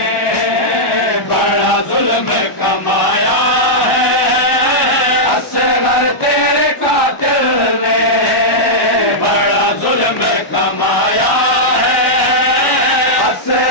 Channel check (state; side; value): late; right; 1.1 ms